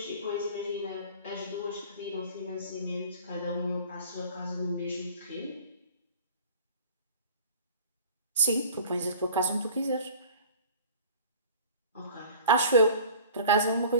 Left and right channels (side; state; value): both; inverted; correlation -0.44